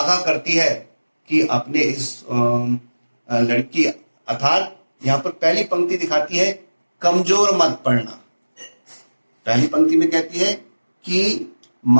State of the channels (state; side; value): inverted; both; correlation -1.00